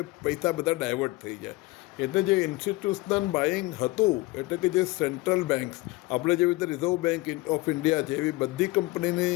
પૈસા બધા ડાયવર્ટ થઈ જાય. એટલે જે ઇન્સ્ટિટ્યુશનલ બાઇંગ હતું એટલે કે જે સેન્ટ્રલ બેન્ક્સ આપણે જેવી રીતે રિઝર્વ બેન્ક ઓફ ઇન્ડિયા છે એવી બધી કંપનીની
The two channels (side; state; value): right; quieter; 21.2 dB